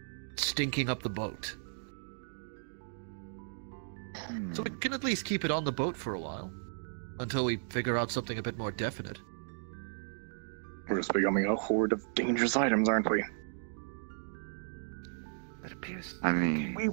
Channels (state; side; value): silent; left; digital silence